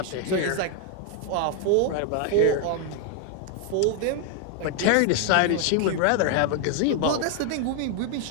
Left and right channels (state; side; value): different; both; correlation 0.00